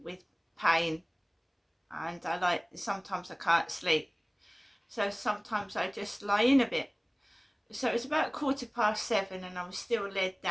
with pain. and sometimes I can't sleep, so sometimes I just lie in a bit. So it's about 7:15 and I was still laid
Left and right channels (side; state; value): both; identical; correlation 1.00